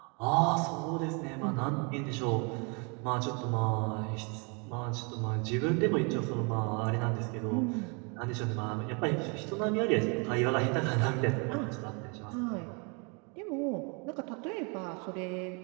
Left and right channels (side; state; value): left; quieter; 33.6 dB